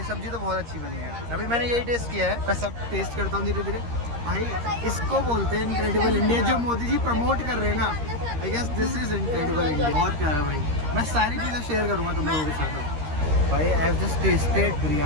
सब्जी तो बहुत अच्छी बनी है। अभी मैंने यही टेस्ट किया है, मैं सब टेस्ट करता हूँ धीरे धीरे। भाई इसको बोलते हैं इनक्रेडिबल इंडिया, जो मोदी जी प्रमोट कर रहे हैं ना। I guess this is incredible India. बहुत प्यारा भाई। मैं सारी चीज़ें शेयर करूँगा तुम लोगों के साथ। भाई I have just tested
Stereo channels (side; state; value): left; late; 13 ms